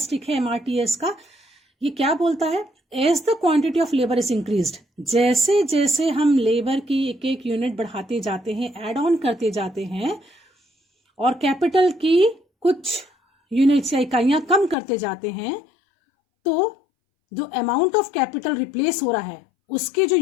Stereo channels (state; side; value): drops out; right; at 14.8 s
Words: है MRTS का. ये क्या बोलता है? As the quantity of labour is increased, जैसे जैसे हम लेबर की एक एक यूनिट बढ़ाते जाते हैं, एड ऑन करते जाते हैं, और कैपिटल की कुछ यूनिट्स या इकाइयां कम करते जाते हैं, तो जो अमाउंट ऑफ कैपिटल रिप्लेस हो रहा है उसके जो